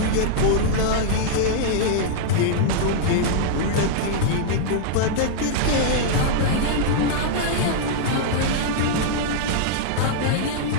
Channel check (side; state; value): both; different; correlation -0.01